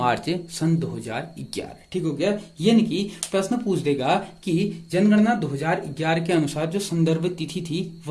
सन 2011। ठीक हो गया। यानी कि प्रश्न पूछ देगा कि जनगणना 2011 के अनुसार जो संदर्भ तिथि थी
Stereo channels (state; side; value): identical; both; correlation 1.00